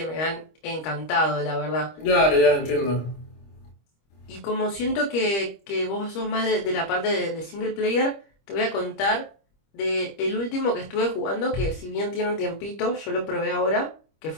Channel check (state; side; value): late; right; 25 ms